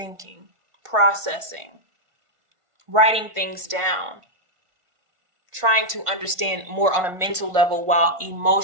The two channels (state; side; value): late; left; 1.5 ms